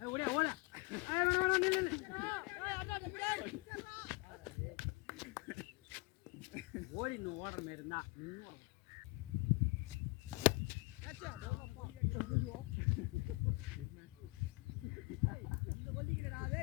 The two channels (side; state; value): right; quieter; 25.8 dB